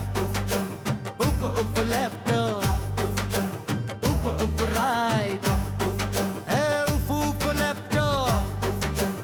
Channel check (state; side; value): identical; both; correlation 1.00